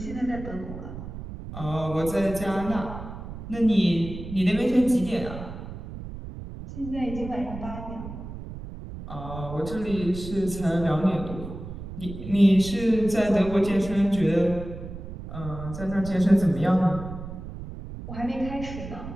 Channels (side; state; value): right; noise; rumble, 10 dB below the sound